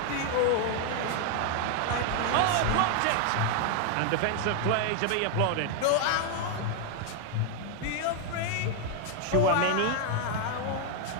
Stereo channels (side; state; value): both; different; correlation 0.00